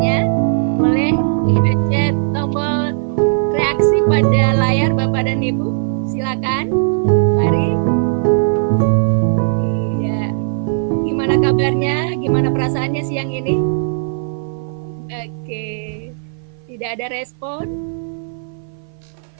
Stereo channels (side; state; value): left; silent; 60 dB below the other